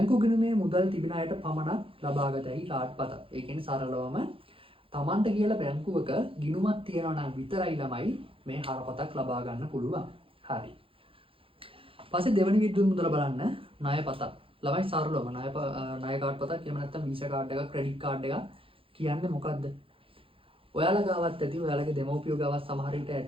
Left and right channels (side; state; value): left; late; 0.26 ms